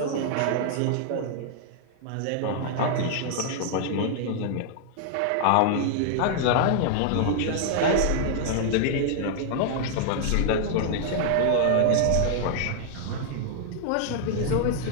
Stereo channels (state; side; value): different; both; correlation -0.01